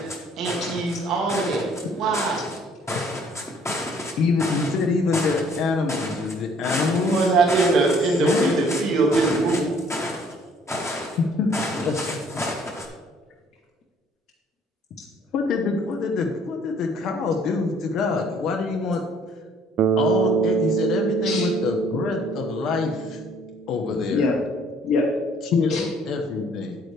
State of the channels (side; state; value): both; normal; correlation 0.60